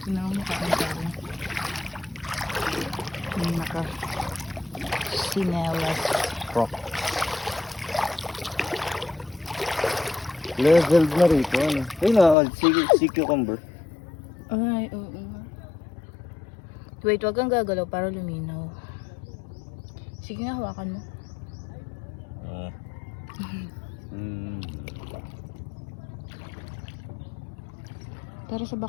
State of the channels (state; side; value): drops out; right; at 12.4 s